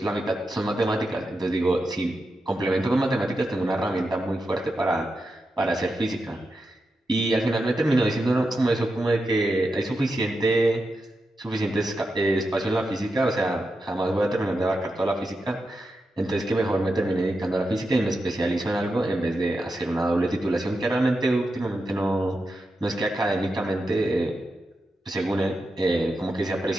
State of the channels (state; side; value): normal; both; correlation 0.88